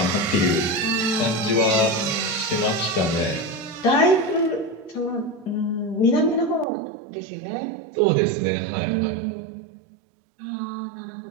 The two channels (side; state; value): left; drops out; at 6.7 s